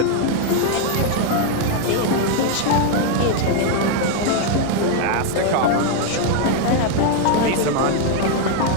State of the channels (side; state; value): both; different; correlation 0.00